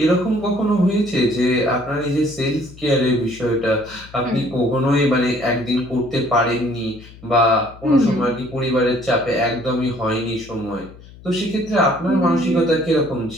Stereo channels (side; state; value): left; noise; hum, 20 dB below the sound